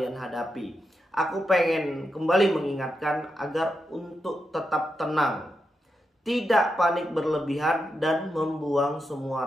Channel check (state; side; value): normal; both; correlation 0.86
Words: hadapi, aku pengen kembali mengingatkan agar untuk tetap tenang, tidak panik berlebihan, dan membuang semua